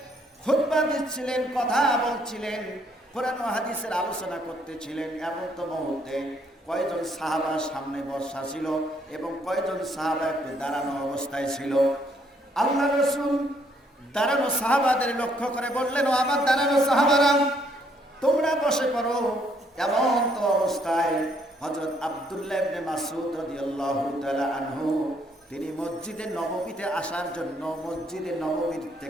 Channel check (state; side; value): normal; both; correlation 0.69